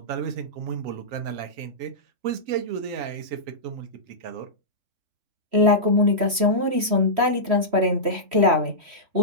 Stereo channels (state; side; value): late; left; 3.1 ms